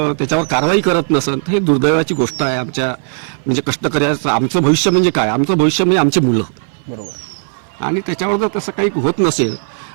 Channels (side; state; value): left; silent; 59 dB below the other